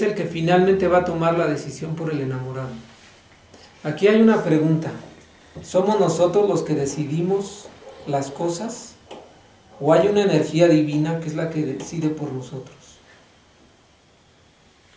el que finalmente va a tomar la decisión por el enamorado. Aquí hay una pregunta: ¿somos nosotros los que decidimos las cosas? ¿O hay una energía divina que es la que decide por nosotros?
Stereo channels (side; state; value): both; identical; correlation 1.00